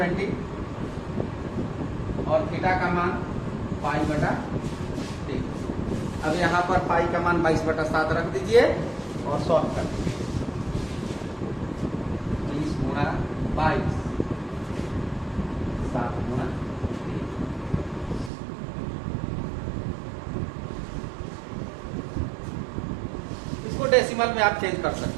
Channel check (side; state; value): left; drops out; at 18.3 s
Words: और थीटा का मान π/3। अब यहाँ पर पाई का मान 22/7 रख दीजिए और सॉल्व कर दीजिए। 20 गुणा 22, 7 गुणा 3। इसको डेसिमल में आप चेंज कर